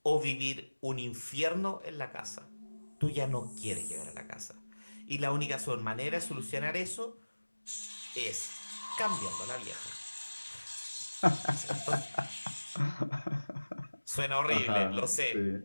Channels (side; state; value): both; inverted; correlation -1.00